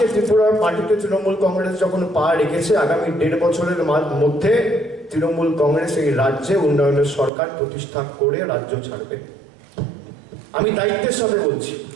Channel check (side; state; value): left; drops out; at 7.3 s